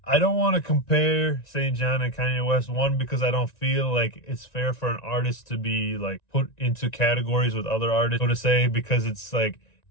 I don't want to compare SAINt JHN and Kanye West, one, because I don't feel like it's fair for an artist to be like put into categories with other artists, so to say, because it's like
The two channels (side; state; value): right; late; 1.9 ms